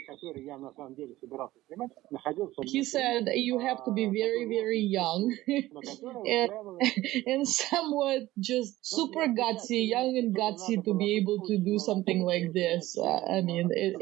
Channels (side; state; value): left; quieter; 16.6 dB